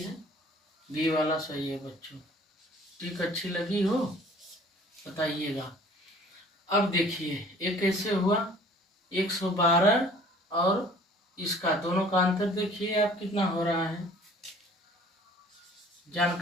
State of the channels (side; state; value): both; normal; correlation 0.51